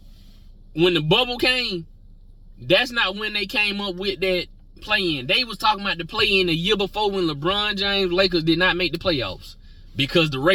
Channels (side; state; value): both; identical; correlation 1.00